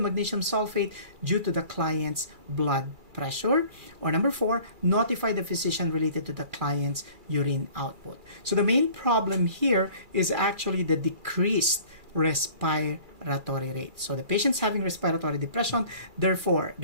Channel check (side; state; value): left; late; 2.4 ms